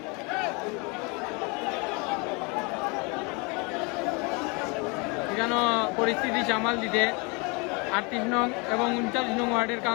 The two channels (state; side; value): quieter; right; 30.1 dB